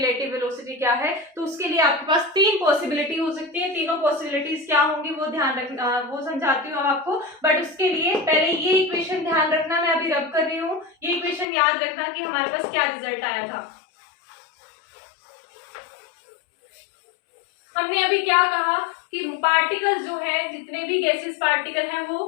वेलोसिटी क्या है? तो उसके लिए आपके पास तीन पॉसिबिलिटी हो सकती है। तीनों पॉसिबिलिटीज क्या होंगी वो ध्यान रखना, वो समझाती हूँ आपको, बट उसके लिए पहले ये इक्वेशन ध्यान रखना, मैं अभी रब कर रही हूँ, ये इक्वेशन याद रखना कि हमारे पास क्या रिजल्ट आया था। हमने अभी क्या कहा कि पार्टिकल्स जो है, जितने भी गैसेस पार्टिकल हैं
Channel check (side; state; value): right; drops out; at 11.5 s